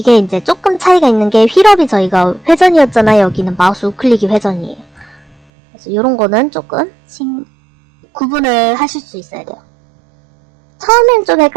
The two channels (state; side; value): drops out; left; at 5.4 s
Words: 이제 조금 차이가 있는 게 휠업이 저희가 회전이었잖아요. 여기는 마우스 우클릭이 회전이에요. 그래서 이런 거는 조금 구분을 하실 수 있어야 돼요. 처음엔 좀